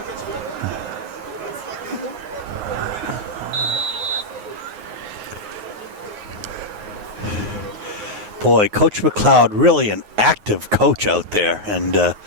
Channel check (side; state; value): left; late; 9.5 ms